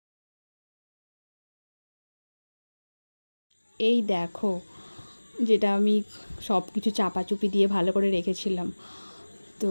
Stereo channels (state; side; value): inverted; both; correlation -1.00